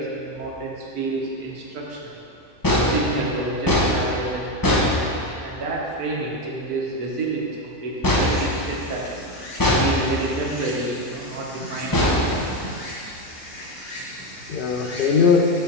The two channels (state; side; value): normal; both; correlation 0.12